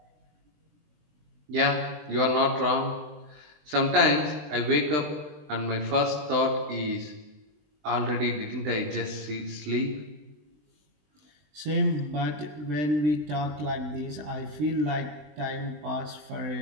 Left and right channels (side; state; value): left; late; 20 ms